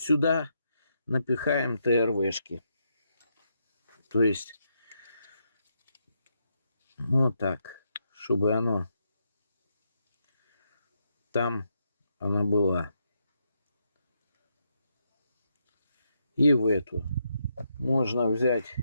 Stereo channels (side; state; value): both; inverted; correlation -0.80